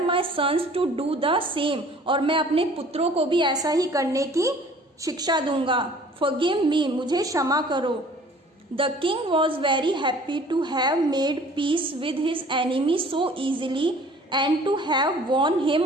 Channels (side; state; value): both; normal; correlation 0.51